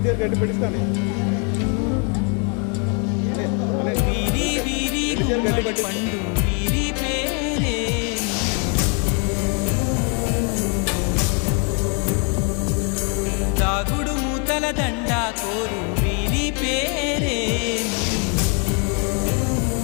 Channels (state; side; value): quieter; right; 37.6 dB